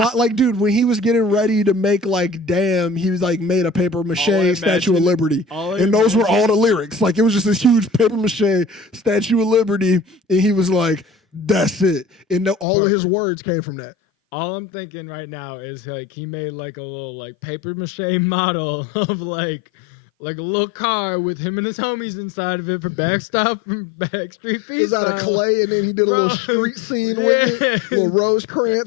dude, when he was getting ready to make like Damn, he was like made a paper mache Statue of Liberty, and those were all the lyrics. Like, it was just this huge paper mache Statue of Liberty, and he was like, that's it, and all of his words came from that. All I'm thinking right now is like he made like a little like paper mache model of like a little car with him and his homies inside of it for Backstop and Backstreet Freestyle. It was out of clay, and then he did a little street scene with it, little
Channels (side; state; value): right; drops out; at 12.7 s